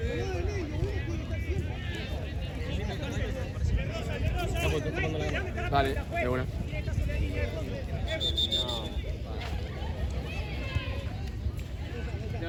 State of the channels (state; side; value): identical; both; correlation 1.00